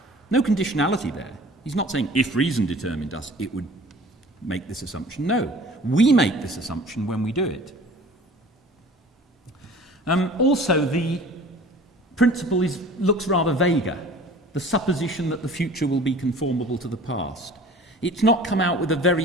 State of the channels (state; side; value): normal; both; correlation 0.45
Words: No conditionality there. He's not saying if reason determined us, it would make this assumption. No, we make this assumption when we do it. Also, the principle looks rather vaguer, the supposition that the future will be conformable to the past. It's not come out with a